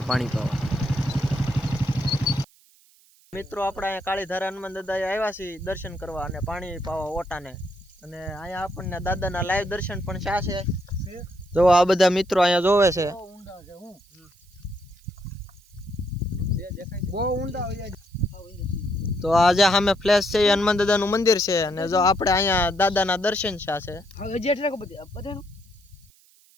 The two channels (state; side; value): noise; right; hiss, 30 dB below the sound